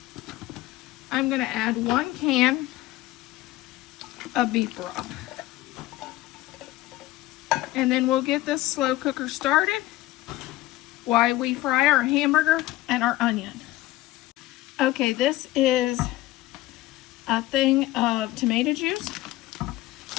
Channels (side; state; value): right; quieter; 17.0 dB